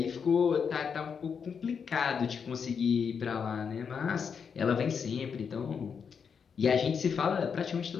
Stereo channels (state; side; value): quieter; right; 6.5 dB